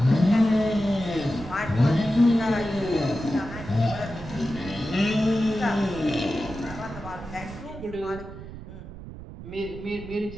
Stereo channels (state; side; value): noise; right; rumble, 13 dB below the sound